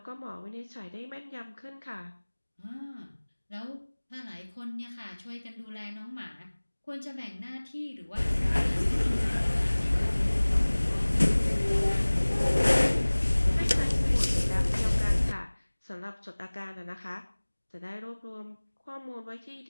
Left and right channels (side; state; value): both; inverted; correlation -1.00